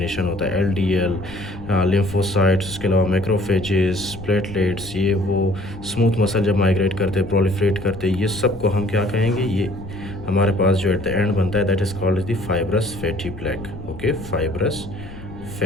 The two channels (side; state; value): left; noise; rumble, 14 dB below the sound